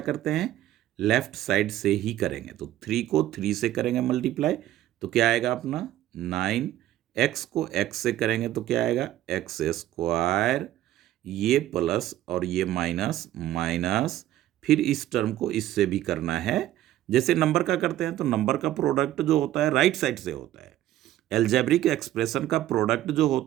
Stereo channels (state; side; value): quieter; left; 13.6 dB